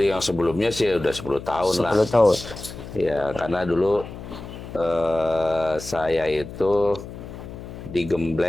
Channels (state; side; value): noise; left; hum, 12 dB below the sound